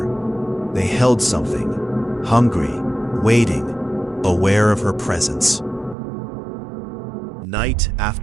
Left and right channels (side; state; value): left; drops out; at 6.0 s